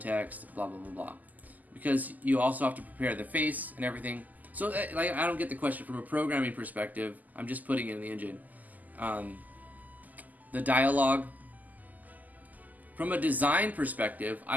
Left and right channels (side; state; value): left; late; 0.081 ms